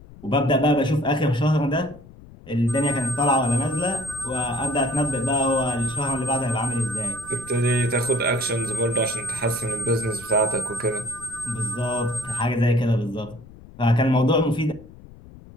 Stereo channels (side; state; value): left; noise; rumble, 20 dB below the sound